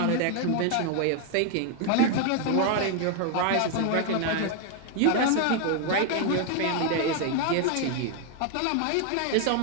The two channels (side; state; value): both; different; correlation 0.01